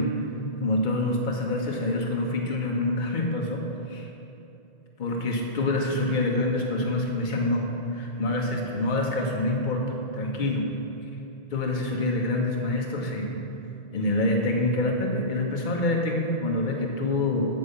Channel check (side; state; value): right; late; 2.2 ms